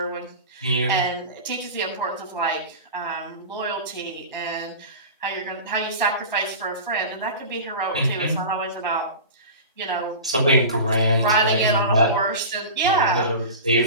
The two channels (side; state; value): both; inverted; correlation -0.31